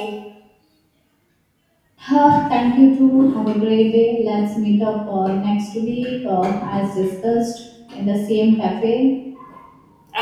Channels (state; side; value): identical; both; correlation 1.00